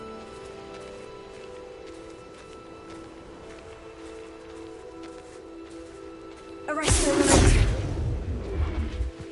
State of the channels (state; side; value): identical; both; correlation 1.00